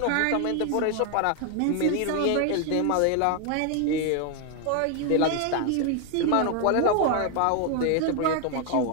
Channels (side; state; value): both; different; correlation 0.01